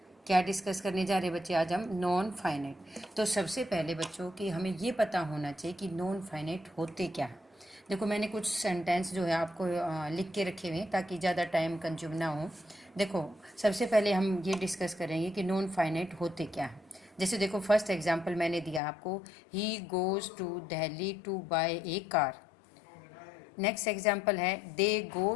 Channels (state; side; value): drops out; right; at 18.8 s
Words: क्या डिस्कस करने जा रहे हैं बच्चे आज हम? Non finite. तो सबसे पहले बच्चों कि हमें ये पता होना चाहिए कि नॉन फाइनाइट होते क्या है। देखो मैंने कुछ सेंटेंस जो है आपको लिख के रखे हुए हैं ताकि ज़्यादा टाइम कंज्यूम ना हो। देखो सबसे पहले हम ये डिस्कस करेंगे कि नॉन फाइनाइट होते क्या है। जैसे देखो फर्स्ट एग्जांपल मैंने दिया आपको, he goes to Delhi to buy a car. Next example है, they go